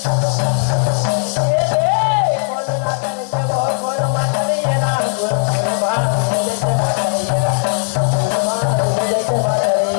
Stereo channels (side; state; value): right; silent; digital silence